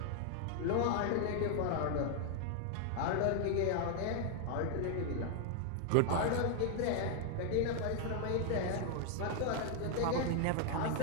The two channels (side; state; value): both; different; correlation 0.00